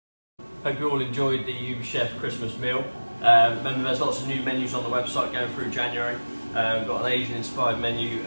Hope you all enjoyed the UBChef Christmas meal. Remember, there's lots of new menus on the website going through January. We've got an Asian inspired menu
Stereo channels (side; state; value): both; inverted; correlation -1.00